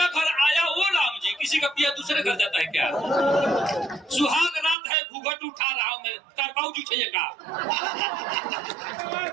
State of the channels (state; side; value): drops out; left; at 4.8 s